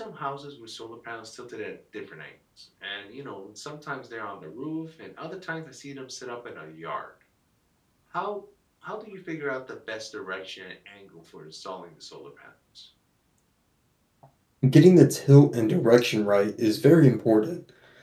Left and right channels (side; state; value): both; identical; correlation 1.00